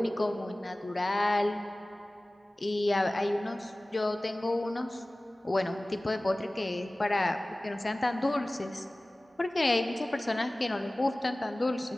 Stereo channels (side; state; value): both; normal; correlation 0.98